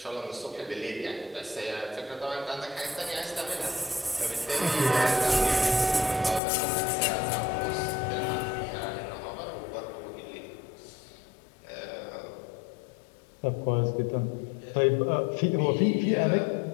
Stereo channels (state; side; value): drops out; right; at 6.4 s